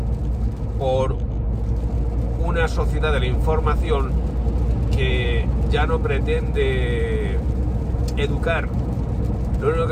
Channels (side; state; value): both; identical; correlation 1.00